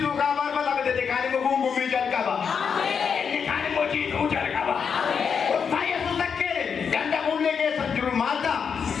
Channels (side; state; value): right; quieter; 6.5 dB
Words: kabar apa tapi detikali menggumbu bijan kabar. Ujar kaba. Saya sudah kere. Ganda mulai ke sanjuru mata.